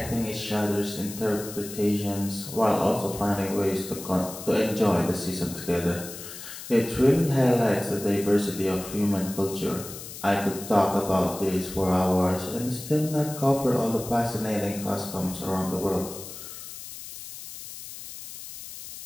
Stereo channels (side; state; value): left; noise; hiss, 12 dB below the sound